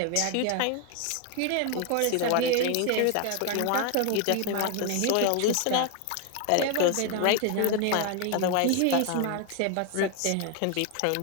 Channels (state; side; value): different; both; correlation 0.01